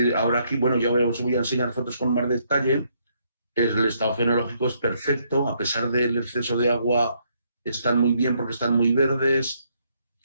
Ahora aquí, bueno, ya os voy a enseñar fotos con más detalle. El estado fenológico es perfecto, a pesar del exceso de agua, están muy bien porque están muy verdes,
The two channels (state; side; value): inverted; both; correlation -0.72